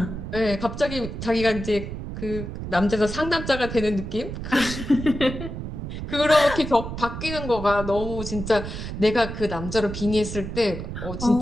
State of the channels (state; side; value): noise; right; rumble, 7 dB below the sound